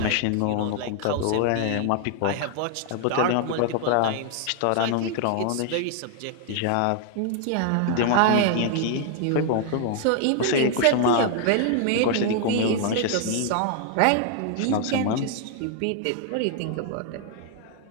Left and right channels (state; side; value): different; both; correlation 0.00